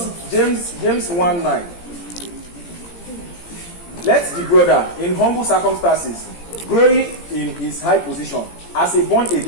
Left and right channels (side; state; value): right; late; 17 ms